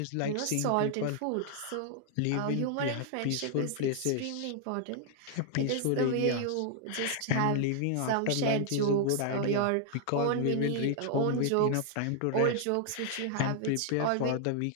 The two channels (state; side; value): different; both; correlation 0.00